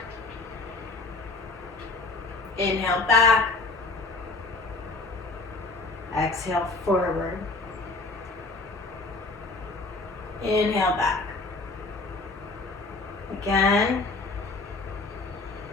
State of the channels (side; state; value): right; quieter; 3.5 dB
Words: Inhale back. Exhale forward. Inhale back. Again.